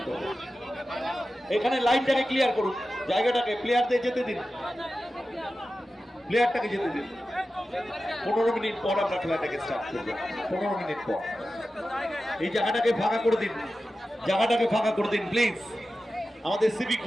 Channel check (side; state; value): both; normal; correlation 0.93